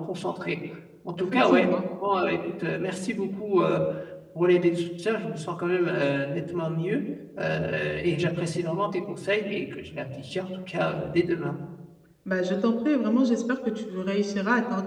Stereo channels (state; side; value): identical; both; correlation 1.00